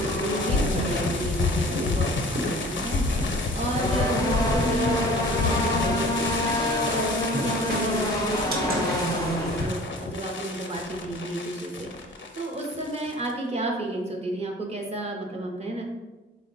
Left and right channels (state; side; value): normal; both; correlation 0.46